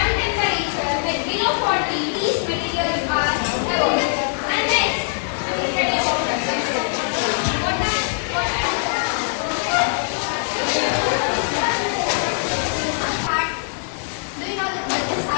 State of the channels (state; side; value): silent; right; digital silence